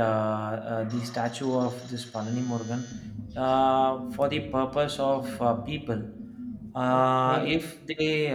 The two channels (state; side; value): identical; both; correlation 1.00